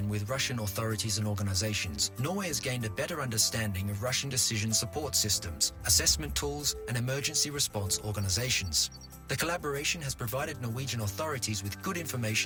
with Russian authorities and organizations, Norway has gained a better understanding of Russian decision support systems, assessment tools, and emergency response organizations. The collaboration has provided Norwegian authorities with good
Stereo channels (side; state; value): both; identical; correlation 1.00